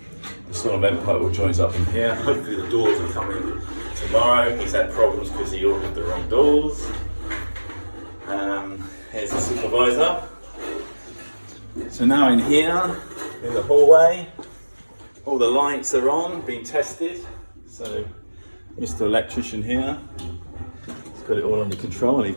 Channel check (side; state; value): both; inverted; correlation -1.00